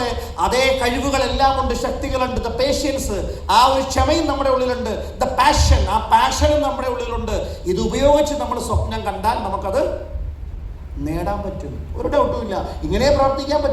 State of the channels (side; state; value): both; identical; correlation 1.00